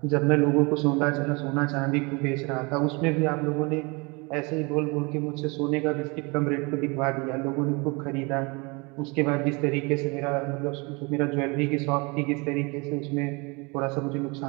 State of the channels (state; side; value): quieter; left; 28.5 dB